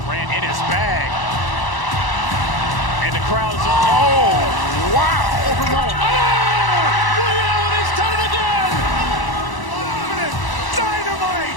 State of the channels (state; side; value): late; right; 1.0 ms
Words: Ran in his bag. And the crowd is, oh, wow. Reality's done it again.